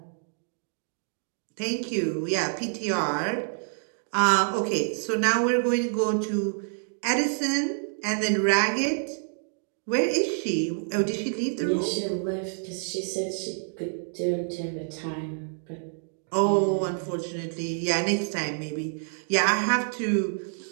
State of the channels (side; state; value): left; silent; digital silence